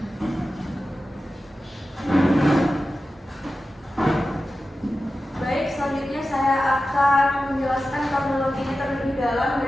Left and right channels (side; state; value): both; normal; correlation 0.93